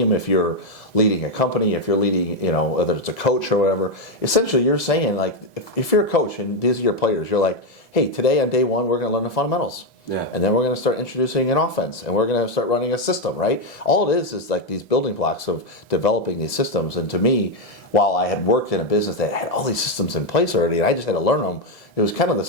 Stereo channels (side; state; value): right; late; 2.0 ms